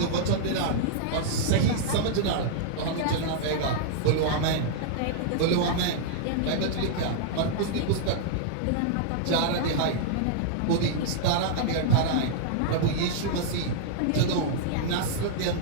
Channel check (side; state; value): both; different; correlation -0.01